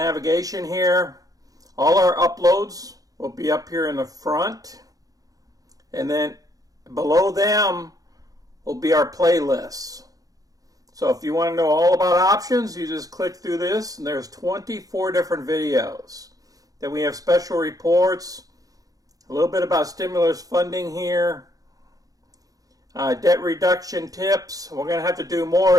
here. All our uploads will be up here in the front. And then below them will be our playlists. So if you want to know all about options, you just click through this, and there's 24 different videos. Then we have special reports, a little bit about stimulus funding here, debt reduction tips. We're going to have to do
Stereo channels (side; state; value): left; late; 0.17 ms